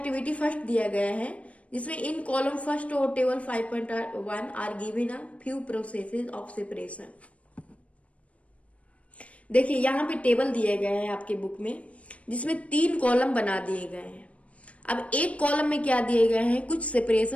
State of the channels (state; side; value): late; right; 0.065 ms